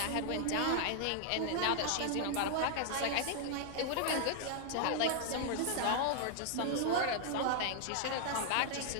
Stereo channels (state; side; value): different; both; correlation -0.01